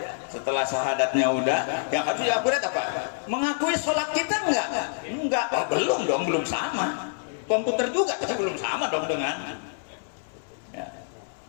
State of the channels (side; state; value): right; silent; digital silence